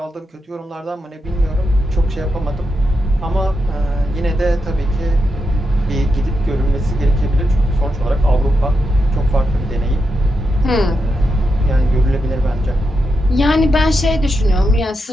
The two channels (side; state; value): both; normal; correlation 0.86